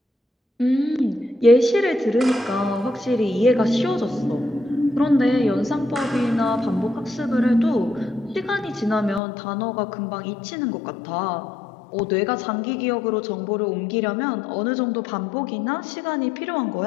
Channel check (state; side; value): drops out; right; at 9.2 s